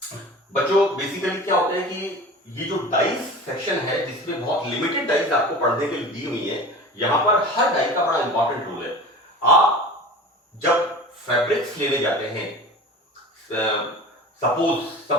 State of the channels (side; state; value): both; normal; correlation 0.36